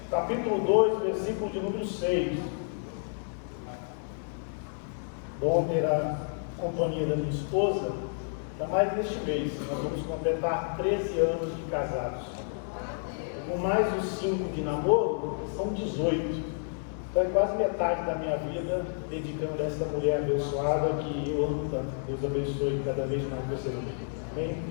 capítulo 2, versículo de número 6. Bom ter a companhia da minha esposa, ainda mais neste mês. Nós vamos completar 13 anos de casados. Com mais os 5 de namoro, são 18. Então é quase metade da minha vida dedicando a essa mulher abençoada que eu amo tanto. Deus abençoe cada vez mais você. Amém?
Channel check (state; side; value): silent; right; 58 dB below the other